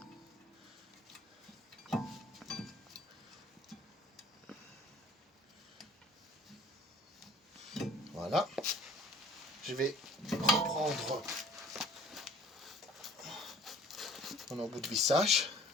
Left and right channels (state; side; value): normal; both; correlation 0.52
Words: Voilà. Je vais reprendre mon embout de vissage.